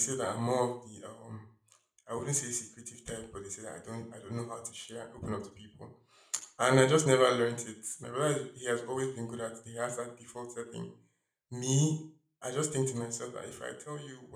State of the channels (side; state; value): both; identical; correlation 1.00